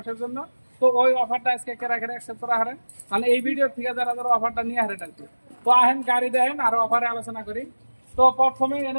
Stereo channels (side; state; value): both; inverted; correlation -1.00